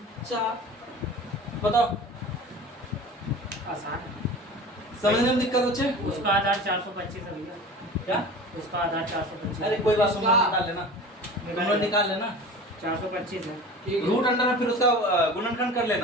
बताओ, आसान है। समझने में दिक्कत होचे? उसका आधार 425 है भैया। क्या? उसका आधार 425। अरे कोई बात, तुम लोग निकाल लेना, तुम लोग निकाल लेना। 425 है। रूट अंडर में फिर उसका गुणनखंड कर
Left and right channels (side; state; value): both; normal; correlation 0.37